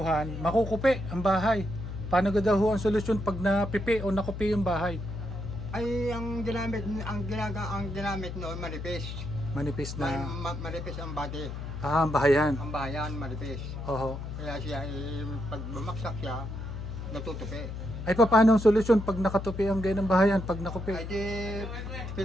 makukupi ang bahay. Paano ga daw ho ang solusyon pag napipi o nakupi yung bahay? Ay, ang ginamit noon, manipis. Manipis na, Manipis ang body. ang bahayan. Ang bahayan, manipis. Oho. Kaya siya, pag bumaksak siya, natutupi. Ay paano ang solusyon pag nakatupi ang ganyan ng bahayan, pag nakupi? Ay di,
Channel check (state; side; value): noise; left; hum, 7 dB below the sound